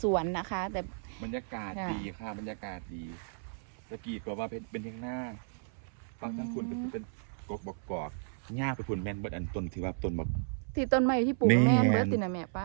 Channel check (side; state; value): left; silent; 55 dB below the other